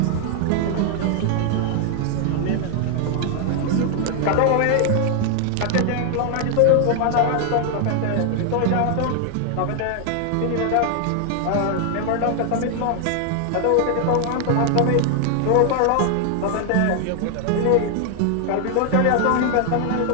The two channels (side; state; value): both; different; correlation 0.00